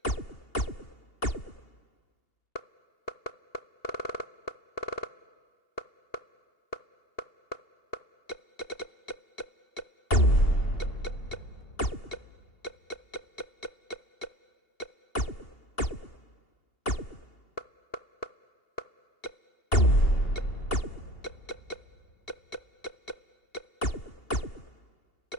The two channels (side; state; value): right; late; 2.8 ms